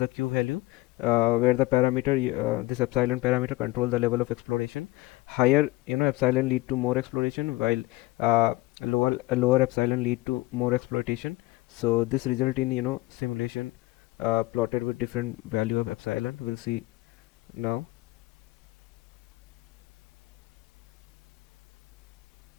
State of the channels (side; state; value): right; quieter; 20.0 dB